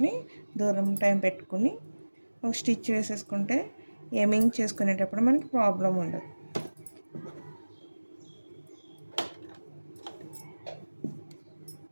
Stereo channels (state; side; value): inverted; both; correlation -1.00